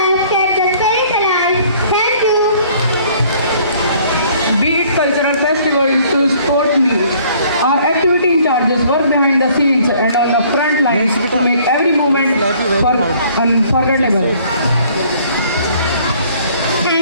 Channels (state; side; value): inverted; both; correlation -0.58